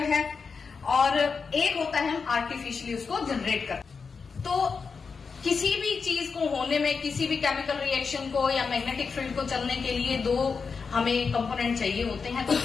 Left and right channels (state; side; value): quieter; right; 5.3 dB